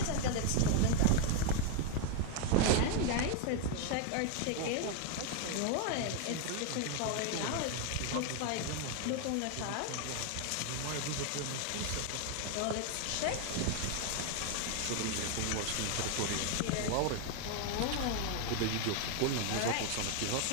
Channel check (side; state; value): both; different; correlation 0.01